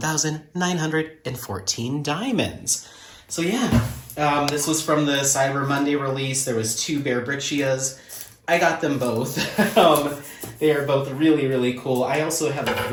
diamonds. So yeah, this was from the Cyber Monday release. There was 2 Bearbrickjias. I got them both. They are both really, really cool. I also have a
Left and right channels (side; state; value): both; identical; correlation 1.00